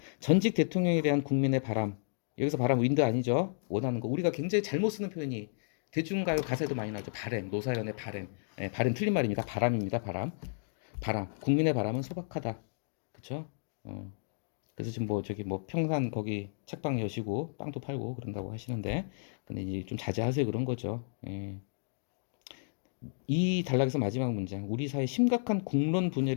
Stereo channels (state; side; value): silent; right; digital silence